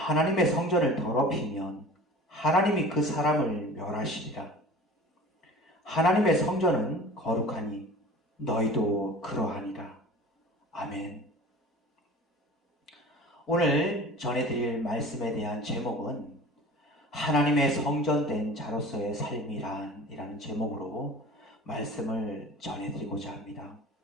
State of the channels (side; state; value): both; normal; correlation 0.40